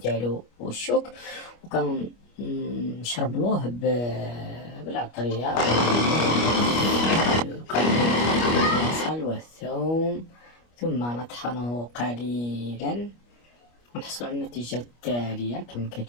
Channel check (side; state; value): right; late; 25 ms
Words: والشوك، وكنشربلوه بالعطرية البصل والثوم، ثم نطحنه قليلا ونحصل على النتيجة التالية كما